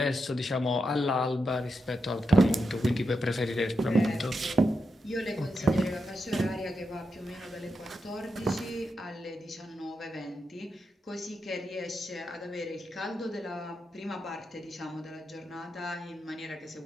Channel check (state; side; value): normal; both; correlation 0.86